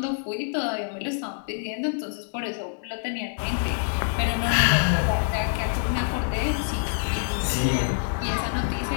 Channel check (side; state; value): right; silent; digital silence